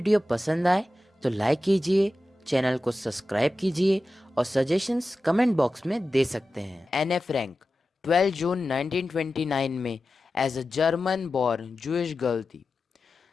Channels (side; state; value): both; normal; correlation 0.93